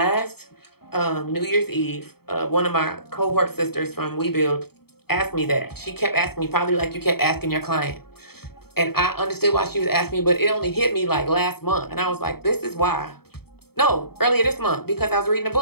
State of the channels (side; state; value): right; late; 0.95 ms